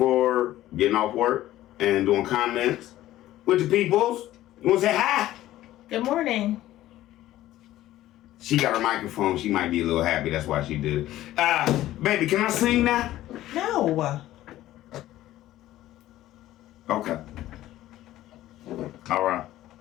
getting off work and doing comments with the peoples. You want to say hi? Good morning. She got her microphone. She might be a little happy. That's why she did it. Baby, can I sing now? No. Okay. All right.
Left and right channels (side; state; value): right; quieter; 14.6 dB